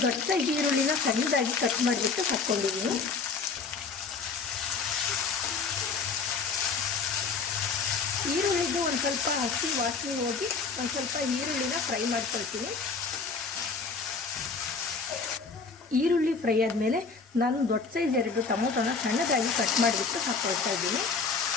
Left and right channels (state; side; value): quieter; right; 4.8 dB